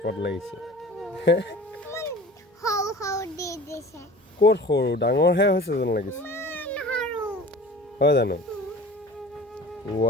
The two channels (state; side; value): normal; both; correlation 0.41